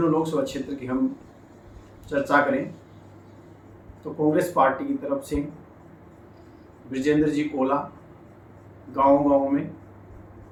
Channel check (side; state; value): both; identical; correlation 1.00